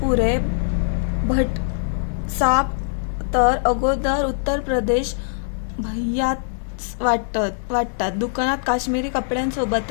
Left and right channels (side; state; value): right; silent; 59 dB below the other